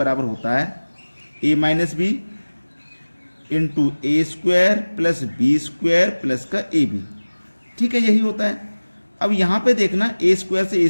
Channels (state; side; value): inverted; both; correlation -1.00